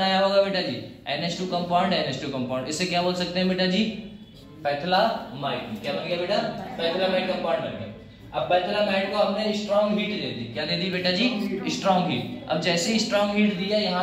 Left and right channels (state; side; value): identical; both; correlation 1.00